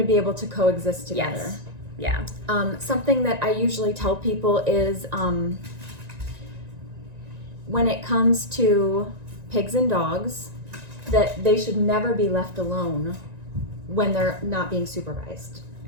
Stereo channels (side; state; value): left; late; 1.9 ms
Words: be able to coexist together. Yes. Yeah. Something that I usually tell people is when it comes to pigs and dogs, that they should never be left alone when they're not being supervised.